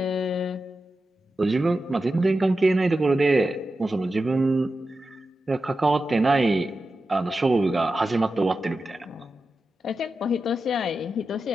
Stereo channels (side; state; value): both; normal; correlation 0.91